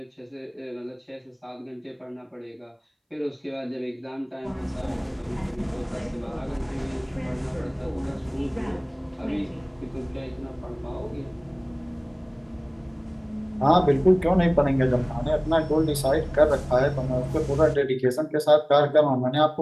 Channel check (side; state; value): both; identical; correlation 1.00